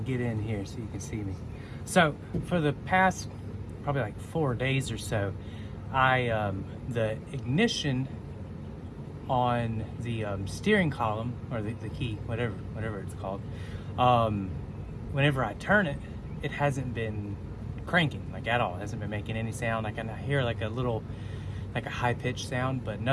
get in here so you can see me. So for the past probably like 4 days or so, the ignition on the steering column, or the key, whatever it's called, whenever I turn it, it hasn't been cranking like at all. It hasn't been making any sound. I can hear like a little, like a high-pitched sound, but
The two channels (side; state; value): both; identical; correlation 1.00